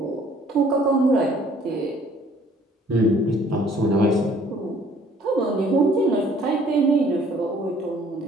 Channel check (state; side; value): normal; both; correlation 0.58